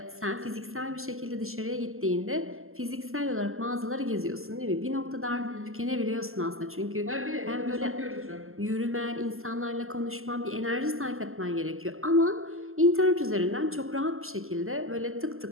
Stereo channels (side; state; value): left; late; 0.62 ms